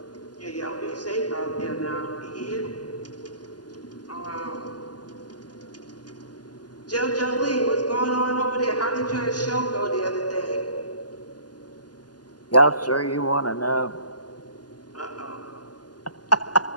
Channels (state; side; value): late; right; 0.70 ms